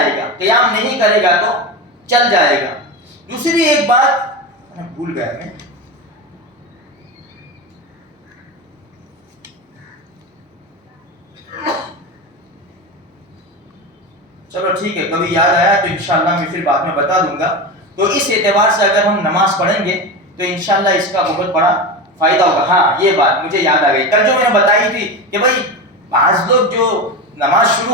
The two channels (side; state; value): both; normal; correlation 0.22